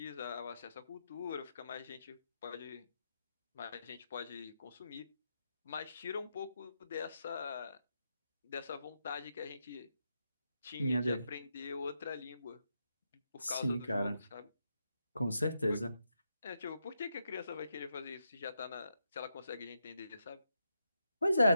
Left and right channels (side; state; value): both; inverted; correlation -0.84